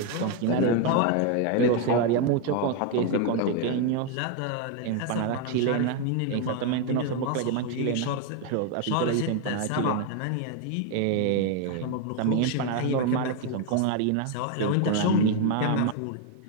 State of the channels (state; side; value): different; both; correlation 0.01